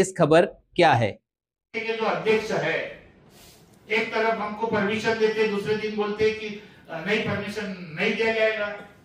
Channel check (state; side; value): identical; both; correlation 1.00